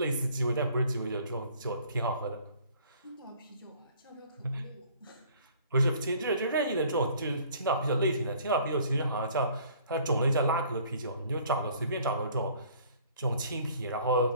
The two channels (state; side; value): inverted; both; correlation -0.55